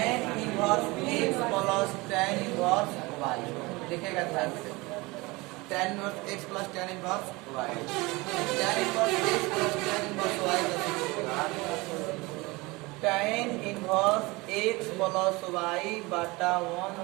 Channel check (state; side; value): quieter; left; 23.5 dB